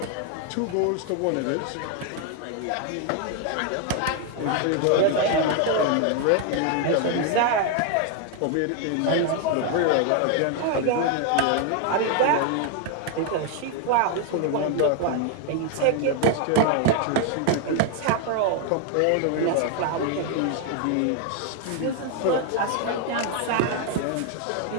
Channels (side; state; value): both; different; correlation 0.01